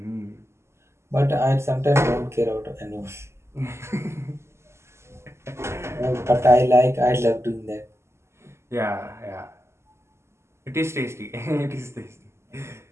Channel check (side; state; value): left; late; 0.13 ms